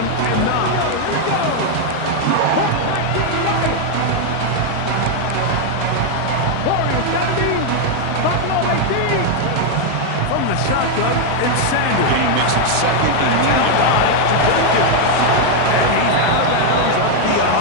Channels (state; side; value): different; both; correlation 0.00